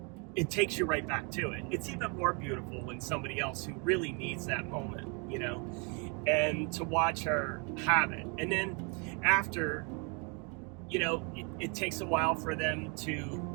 it takes you right back to it. It's even more beautiful when somebody else who really needs that moment, and to watch her have it. And then after, it takes a while for them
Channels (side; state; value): left; quieter; 34.3 dB